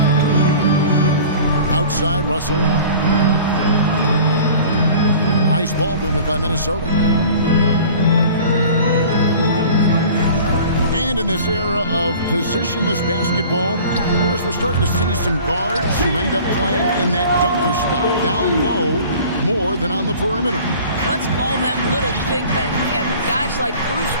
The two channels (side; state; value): both; inverted; correlation -0.44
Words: Outside Russell. Nice ball movement by Minnesota. And in this era of positionless basketball, of course, we're starting to see some guards who end up playing in that dunker spot down low more than on the perimeter. Let's call them little big men, Kevin. Guys like Bruce